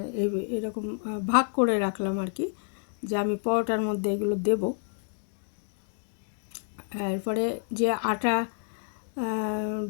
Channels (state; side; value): silent; right; 59 dB below the other